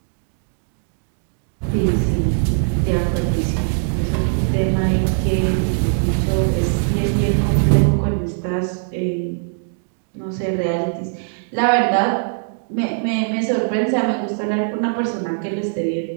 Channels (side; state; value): left; silent; digital silence